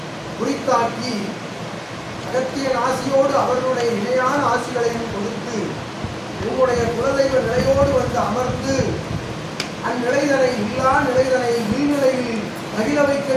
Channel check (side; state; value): both; identical; correlation 1.00